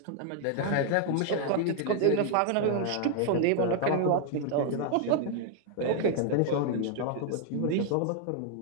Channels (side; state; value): both; different; correlation 0.00